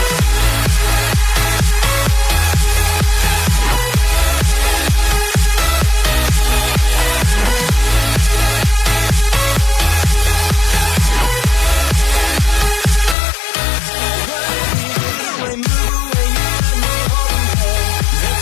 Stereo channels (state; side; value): drops out; right; at 13.2 s